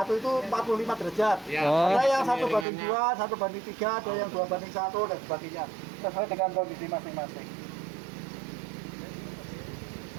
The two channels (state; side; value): drops out; left; at 2.7 s